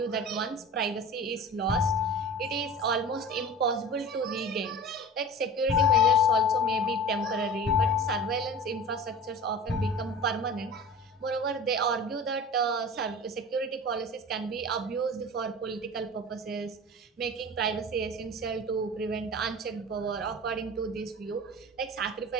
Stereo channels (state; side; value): normal; both; correlation 0.36